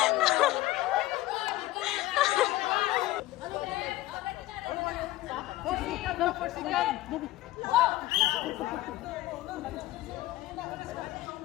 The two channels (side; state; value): right; quieter; 16.8 dB